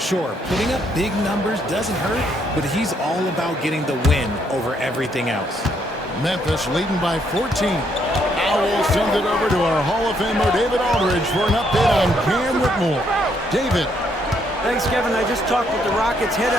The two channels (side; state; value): both; normal; correlation 0.72